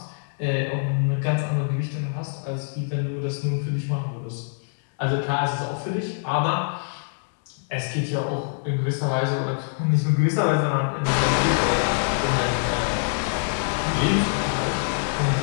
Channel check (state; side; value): silent; right; 62 dB below the other